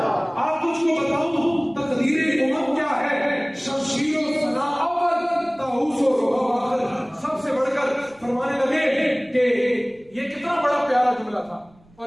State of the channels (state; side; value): noise; right; rumble, 30 dB below the sound